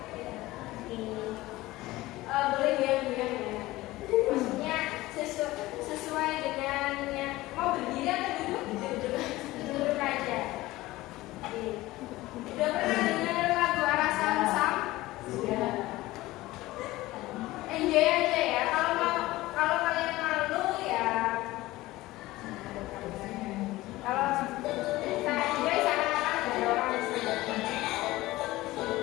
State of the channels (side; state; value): right; quieter; 18.3 dB